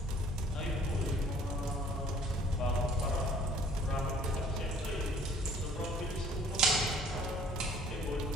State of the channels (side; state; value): both; normal; correlation 0.55